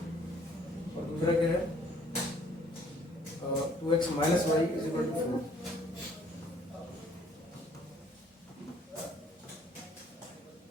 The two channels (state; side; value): normal; both; correlation 0.60